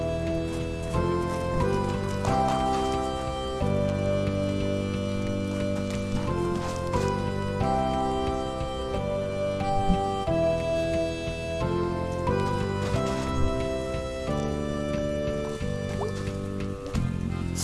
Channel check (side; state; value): both; identical; correlation 1.00